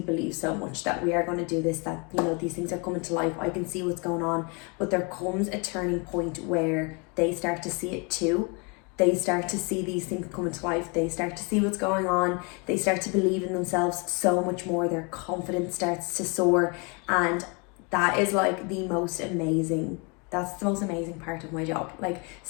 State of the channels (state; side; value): quieter; right; 31.8 dB